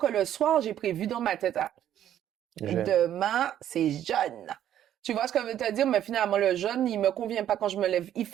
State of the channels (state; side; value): quieter; left; 11.0 dB